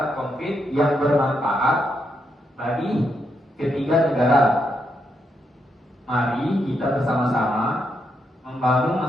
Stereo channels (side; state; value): both; normal; correlation 0.80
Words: konkret yang bermanfaat bagi ketiga negara. Mari kita bersama-sama membangun